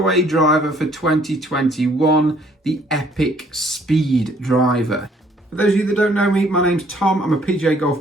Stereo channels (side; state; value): both; normal; correlation 0.62